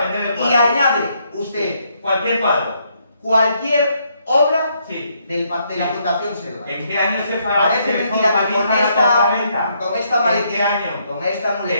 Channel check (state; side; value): inverted; both; correlation -0.73